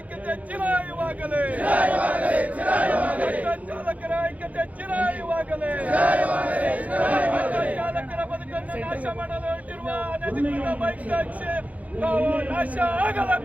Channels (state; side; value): late; left; 0.071 ms